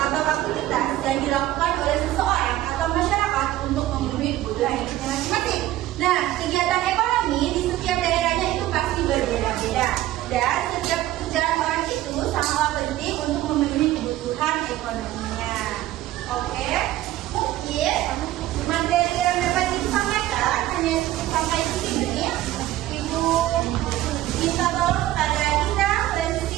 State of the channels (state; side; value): quieter; left; 14.8 dB